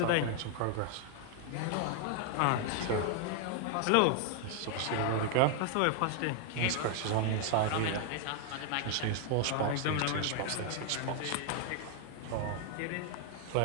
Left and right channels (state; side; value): different; both; correlation 0.00